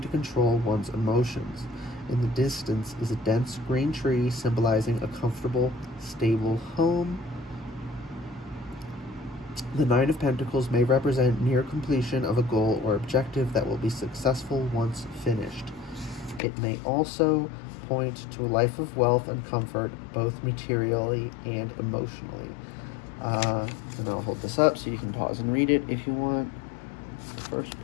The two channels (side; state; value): right; drops out; at 16.4 s